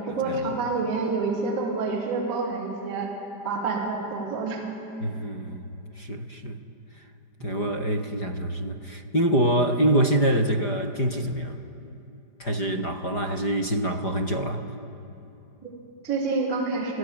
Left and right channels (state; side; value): late; right; 5.0 ms